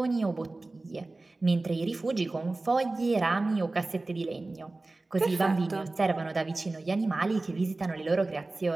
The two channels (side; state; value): left; quieter; 3.2 dB